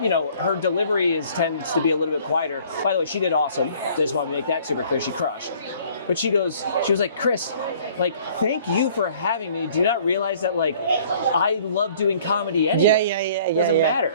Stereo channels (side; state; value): both; inverted; correlation -0.55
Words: delivery tends to be a little bit quieter. By the way, she did awesome. Just wanted to make that super clear. She crushed. But she was like, Chris, like, thank you for having me. Do you not realize that, like, I love doing comedy anyway? Yeah. It doesn't